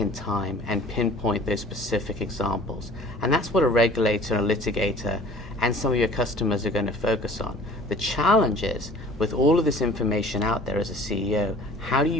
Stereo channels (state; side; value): normal; both; correlation 0.48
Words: time and pinpoint those specific examples. And that's what a regulator, a litigator, and some of your customers are going to focus on. The challenge is, with all of this information out there as a CEO, how do